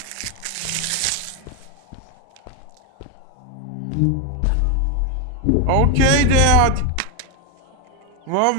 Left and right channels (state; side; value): different; both; correlation 0.01